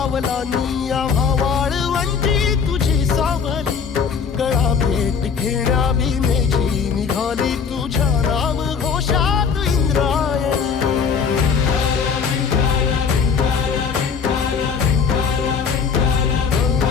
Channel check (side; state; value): right; quieter; 6.0 dB